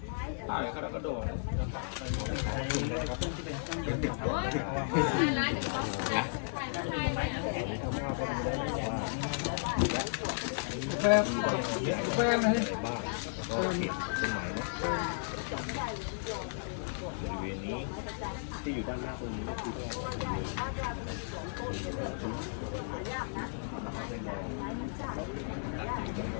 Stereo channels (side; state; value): right; silent; digital silence